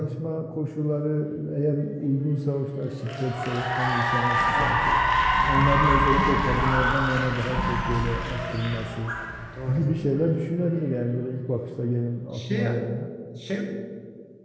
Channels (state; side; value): identical; both; correlation 1.00